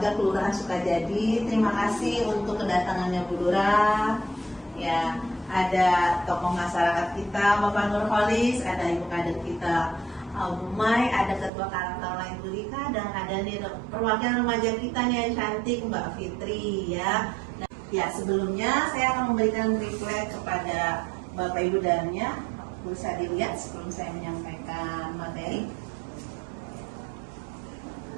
Kelurahan Sukajadi. Terima kasih untuk kedatangannya Bu Lurah. Ya, ada tokoh masyarakat kita Bapak Nurholis, ada Ibu Kader kita Bu Mai, ada Ketua Karang Taruna Ibu Lika, dan ada nih perwakilan remaja kita nih yang cantik Mbak Fitri ya. Nah, ya sebelumnya saya akan memberikan refleks kepada Bapak Ibu dannya. Bisa dilihat sebelum saya menyampaikan materi.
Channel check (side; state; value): left; drops out; at 11.5 s